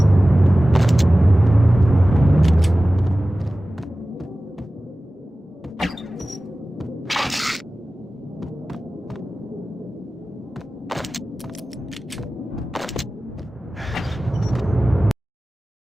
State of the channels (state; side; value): normal; both; correlation 0.96